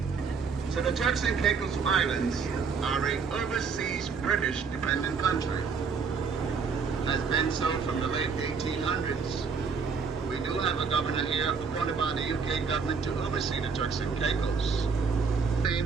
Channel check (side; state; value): left; quieter; 5.4 dB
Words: So the Turks and Caicos Islands are an overseas British dependent country. Has been so from the late 1800s. We do have a governor here appointed by the UK government to oversee the Turks and Caicos.